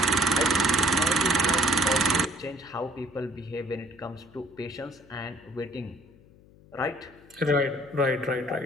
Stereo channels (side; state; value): left; noise; hum, 25 dB below the sound